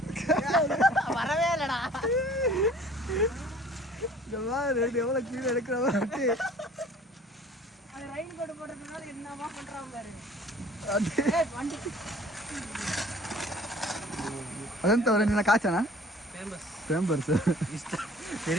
வரவே இல்லடா. ரெண்டு எவ்வளோ கீழே எடுக்கிற மாதிரி ಅದಂತ ಅವರ ನಿನ್ನ ಕಾಚನಾ ಫೇಮಸ್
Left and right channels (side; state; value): both; normal; correlation 0.50